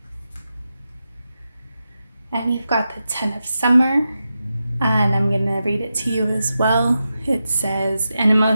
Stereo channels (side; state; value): both; inverted; correlation -0.89